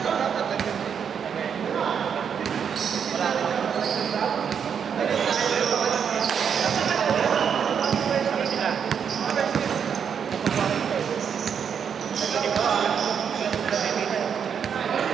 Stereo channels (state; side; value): quieter; left; 7.4 dB